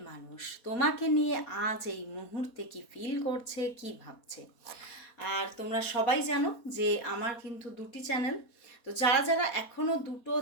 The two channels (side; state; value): right; late; 4.2 ms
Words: মানুষ তোমাকে নিয়ে আজ এই মুহূর্তে কি ফিল করছে, কি ভাবছে। আর তোমরা সবাই জানো যে আমার কিন্তু দুটি চ্যানেল, তো যারা যারা এখনও দুটো